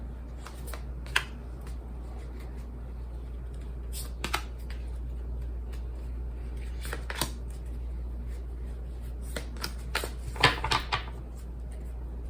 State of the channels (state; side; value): identical; both; correlation 1.00